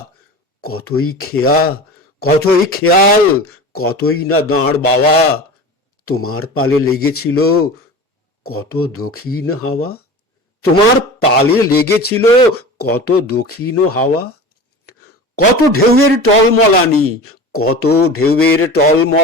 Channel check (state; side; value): normal; both; correlation 0.34